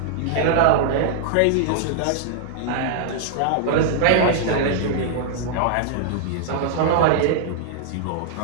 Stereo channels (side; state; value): both; different; correlation -0.01